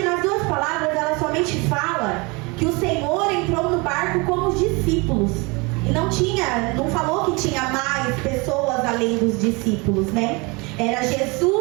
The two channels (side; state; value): left; quieter; 27.5 dB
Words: nas duas palavras ela somente fala que o Senhor entrou no barco com os discípulos. E não falou que tinha mais pessoas além dos discípulos, né? Era